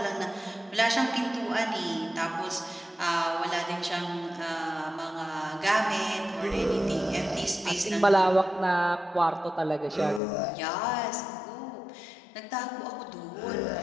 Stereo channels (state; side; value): drops out; right; at 10.2 s